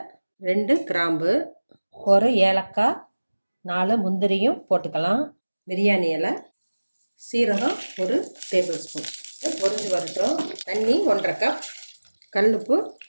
2 கிராம்பு, ஒரு ஏலக்காய், 4 முந்திரியும் போட்டுக்கலாம். பிரியாணி இலை, சீரகம் 1 டேபிள் ஸ்பூன். பொரிஞ்சு வரட்டும். தண்ணி 1.5 கப், கல்லுப்பு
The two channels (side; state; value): both; inverted; correlation -1.00